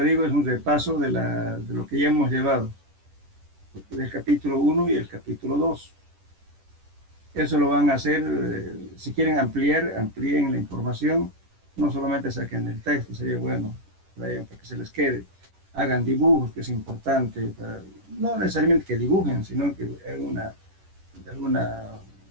digo, es un repaso de lo que ya hemos llevado, del capítulo 1 y el capítulo 2. Eso lo van a hacer, si quieren amplíen la información, no solamente saquen el texto, sería bueno para que se les quede. Hagan dibujos, que es importante, no necesariamente que dibujen, sino que alguna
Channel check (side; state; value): left; late; 10 ms